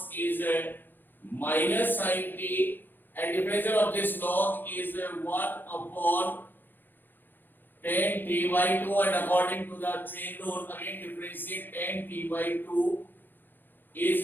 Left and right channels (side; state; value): right; late; 0.093 ms